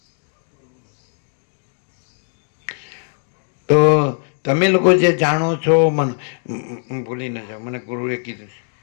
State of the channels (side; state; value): right; silent; 57 dB below the other